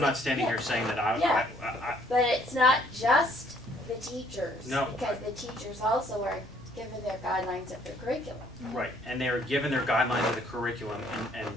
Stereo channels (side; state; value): right; noise; rumble, 27 dB below the sound